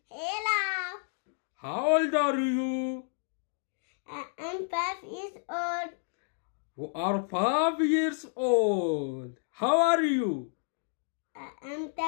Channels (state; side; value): silent; right; digital silence